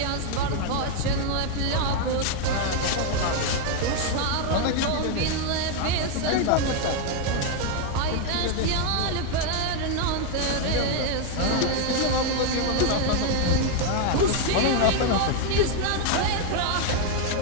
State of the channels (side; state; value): both; different; correlation 0.01